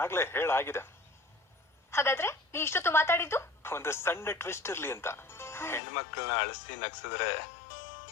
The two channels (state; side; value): drops out; right; at 5.8 s